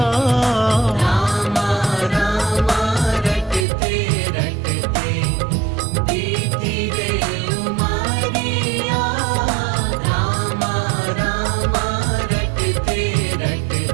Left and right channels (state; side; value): drops out; left; at 3.7 s